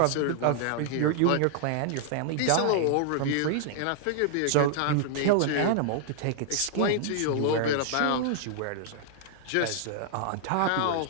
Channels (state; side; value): different; both; correlation -0.01